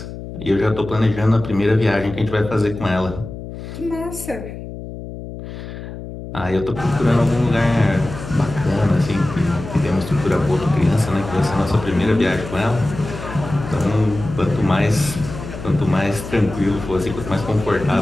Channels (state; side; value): noise; left; hum, 11 dB below the sound